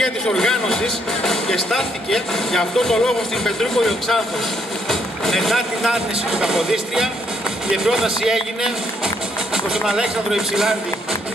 της οργάνωσης και στάθηκε για αυτό το λόγο στην Πετρούπολη ο Ξάνθος. Μετά την άρνηση του Καποδίστρια, η πρόταση έγινε προς τον Αλέξανδρο Υψηλάντη.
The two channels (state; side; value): normal; both; correlation 0.72